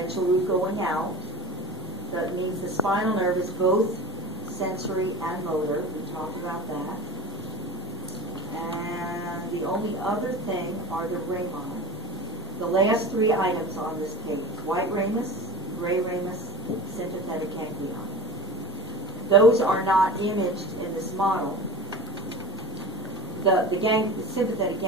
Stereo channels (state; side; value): normal; both; correlation 0.36